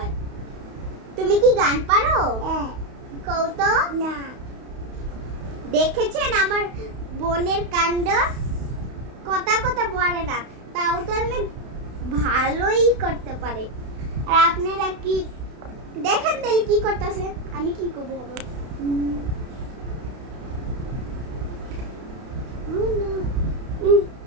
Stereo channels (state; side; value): late; left; 32 ms